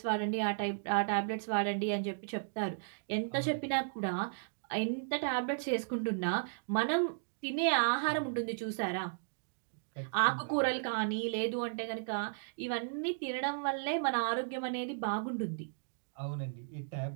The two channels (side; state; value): left; silent; digital silence